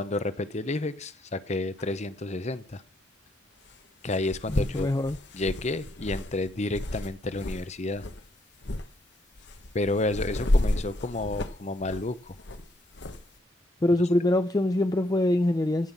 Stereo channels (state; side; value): normal; both; correlation 0.74